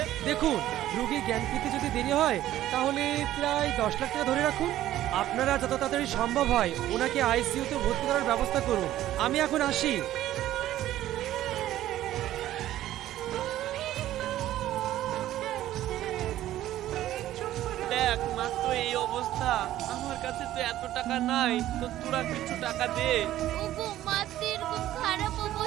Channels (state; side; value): quieter; left; 13.6 dB